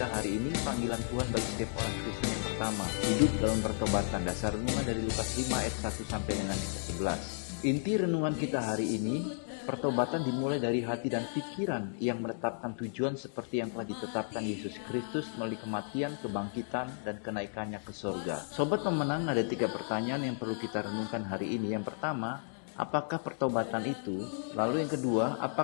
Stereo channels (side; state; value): right; silent; digital silence